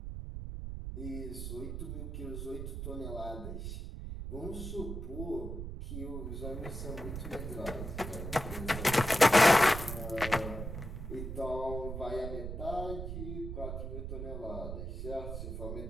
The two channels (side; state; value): right; noise; rumble, 6 dB below the sound